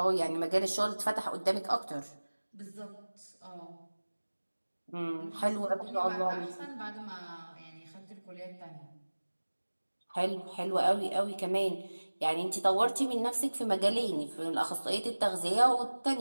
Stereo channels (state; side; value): inverted; both; correlation -1.00